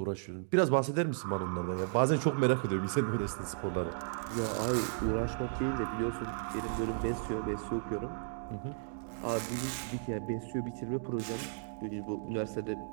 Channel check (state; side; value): silent; left; digital silence